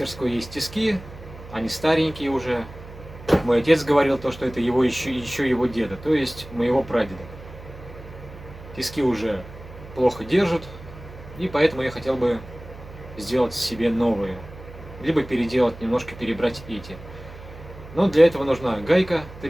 есть тиски, они старенькие уже. Мой отец говорил то, что это еще его деда, то есть моего прадеда. Тиски уже плохо держат, и поэтому я хотел бы сделать себе новые. Либо переделать, немножко перебрать эти. Но для этого нужна гайка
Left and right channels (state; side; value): noise; right; hum, 16 dB below the sound